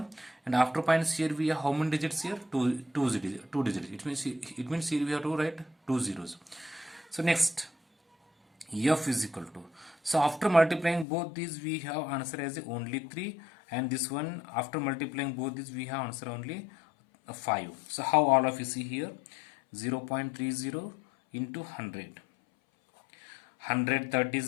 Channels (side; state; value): right; drops out; at 11.1 s